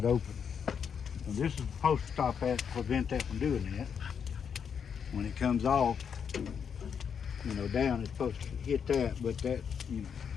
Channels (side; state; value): right; quieter; 7.2 dB